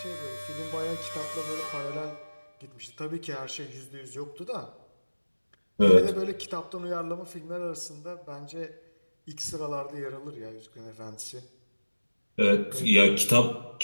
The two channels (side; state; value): both; inverted; correlation -1.00